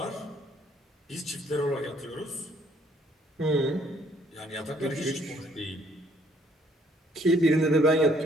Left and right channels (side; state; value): both; normal; correlation 0.64